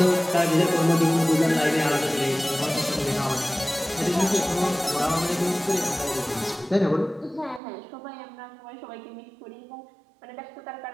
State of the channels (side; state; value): left; drops out; at 7.6 s